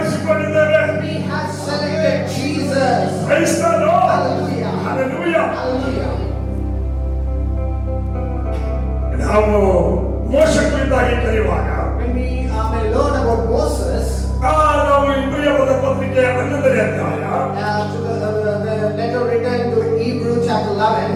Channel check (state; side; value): identical; both; correlation 1.00